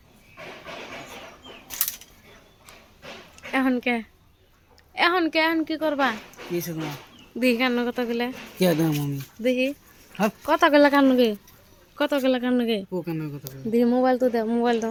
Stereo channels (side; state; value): both; identical; correlation 1.00